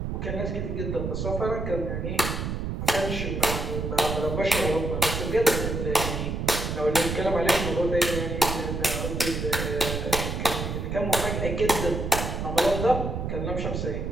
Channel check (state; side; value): noise; right; rumble, 3 dB below the sound